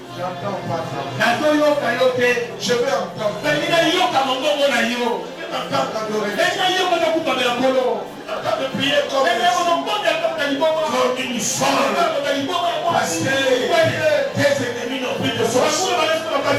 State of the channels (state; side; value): identical; both; correlation 1.00